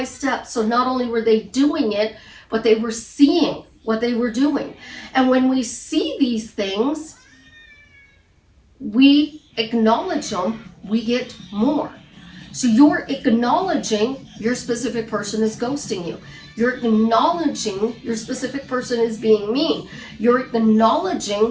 step. So not only were they doing it, but they were seeing what they were doing. And when we see these things, we acknowledge them, we get more. So you're acknowledging your specific person is ghosting you. You're acknowledging your specific person is being mean. You're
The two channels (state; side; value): identical; both; correlation 1.00